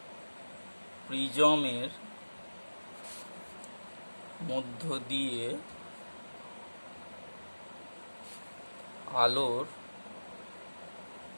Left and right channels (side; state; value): both; inverted; correlation -1.00